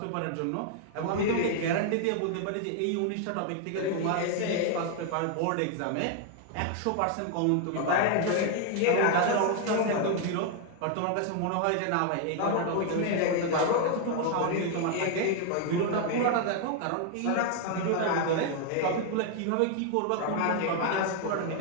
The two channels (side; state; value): both; different; correlation 0.00